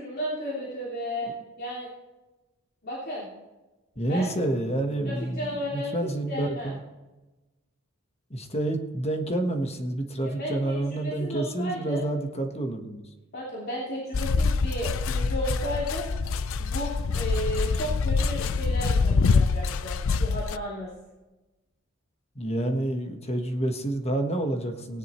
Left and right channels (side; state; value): both; normal; correlation 0.67